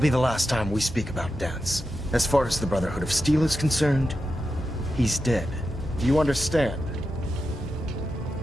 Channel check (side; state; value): both; normal; correlation 0.89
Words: the last time we speak about Dance. As far as the Brotherhood of Steel is concerned, he's dead. Do you understand?